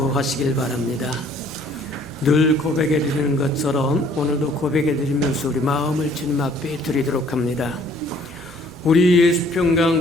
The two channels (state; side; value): noise; right; hum, 30 dB below the sound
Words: 바랍니다. 늘 고백해 드리는 것처럼 오늘도 고백해 드리면서 우리 마음을 주님 앞에 드리도록 합니다. 우리